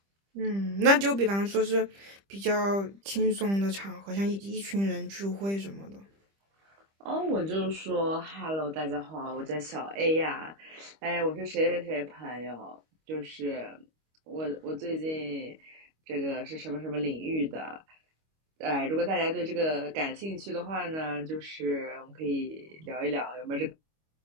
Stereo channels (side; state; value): left; late; 25 ms